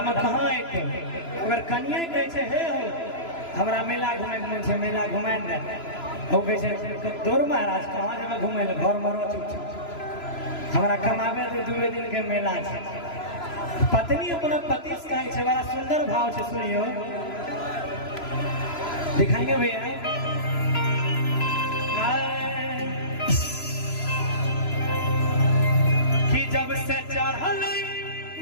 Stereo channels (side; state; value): right; late; 3.0 ms